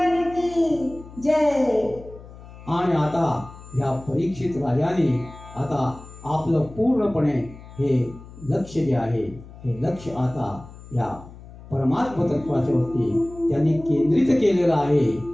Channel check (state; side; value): noise; left; hum, 18 dB below the sound